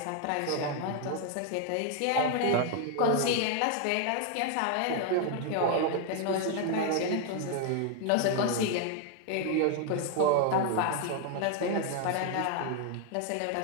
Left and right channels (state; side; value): different; both; correlation 0.00